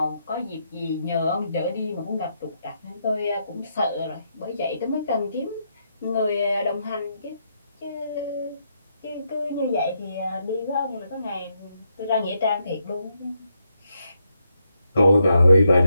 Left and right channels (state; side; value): inverted; both; correlation -0.80